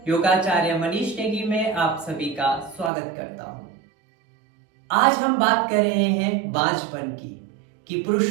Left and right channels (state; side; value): drops out; left; at 2.9 s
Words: योगाचार्य मनीष नेगी में आप सभी का स्वागत करता हूं। आज हम बात कर रहे हैं बांझपन की, कि